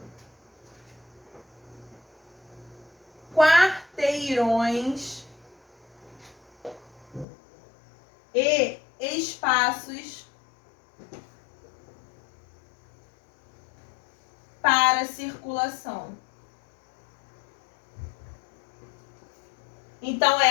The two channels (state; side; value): drops out; right; at 7.2 s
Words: quarteirões e espaços para circulação. Então,